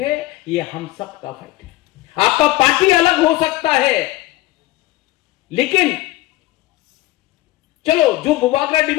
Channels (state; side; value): quieter; right; 17.7 dB